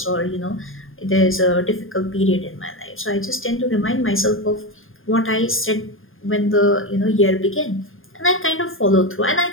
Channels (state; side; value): late; right; 0.59 ms